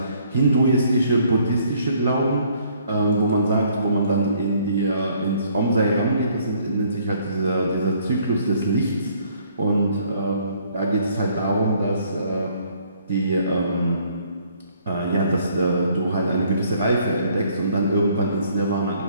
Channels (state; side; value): inverted; both; correlation -0.63